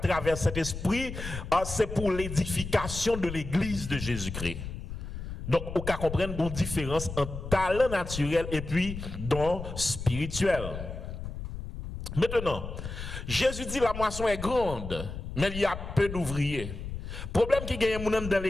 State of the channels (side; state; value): left; noise; rumble, 8 dB below the sound